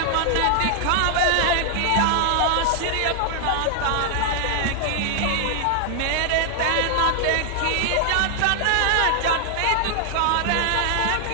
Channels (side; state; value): both; different; correlation 0.00